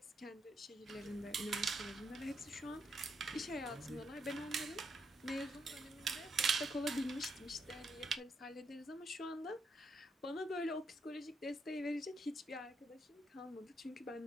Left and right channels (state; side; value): normal; both; correlation 0.78